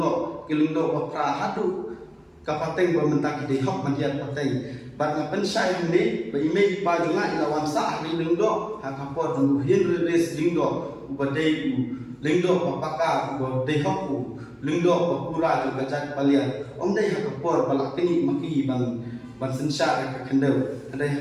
kilung do ba pra hadu ka pateng ba mentak de hok mandiat pateng bat na pensai ni ba ime ba junga ilawan sa ri lingdo ha ka po du hin res lingdo ubadei u lingdo papaka u de hok u lingdo pa pura ju gajat palian om dei ha ka por balak kini maki ban sensha ka khendau dei ha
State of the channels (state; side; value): identical; both; correlation 1.00